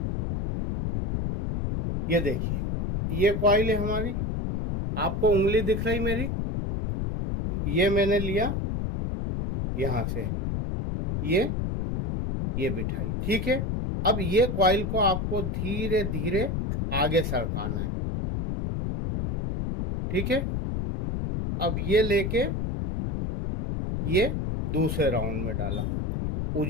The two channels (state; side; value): noise; left; rumble, 1 dB below the sound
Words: ये देखिए, ये कॉइल है हमारी, आपको उंगली दिख रही मेरी, ये मैंने लिया यहां से, ये बिठाई, ठीक है। अब ये कॉइल को आपको धीरे धीरे आगे सरकाना है, ठीक है। अब ये लेके ये दूसरे राउंड में डाला।